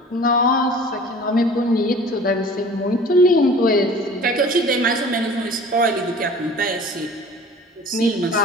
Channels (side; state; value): both; normal; correlation 0.45